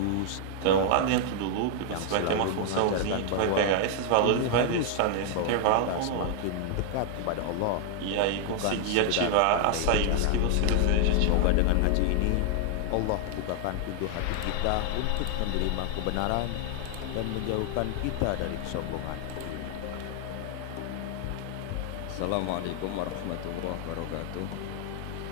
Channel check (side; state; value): both; different; correlation 0.00